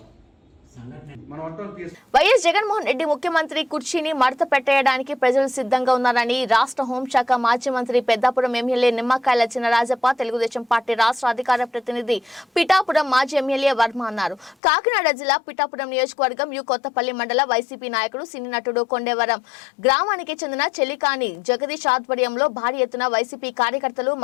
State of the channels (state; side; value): drops out; right; at 14.6 s